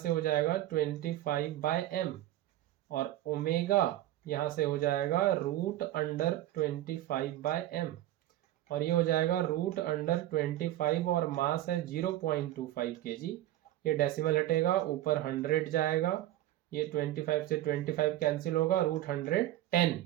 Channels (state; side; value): quieter; left; 14.2 dB